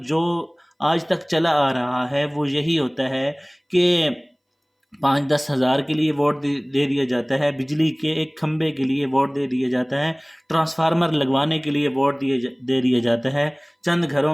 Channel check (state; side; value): identical; both; correlation 1.00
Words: جو آج تک چلا آ رہا ہے وہ یہی ہوتا ہے کہ 5-10 ہزار کے لیے ووٹ دے دیا جاتا ہے، بجلی کے ایک کھمبے کے لیے ووٹ دے دیا جاتا ہے، ٹرانسفارمر لگوانے کے لیے ووٹ دے دیا جاتا ہے، چند گھروں